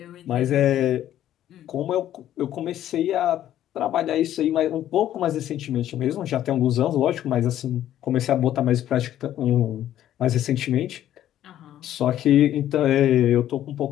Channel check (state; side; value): quieter; right; 12.0 dB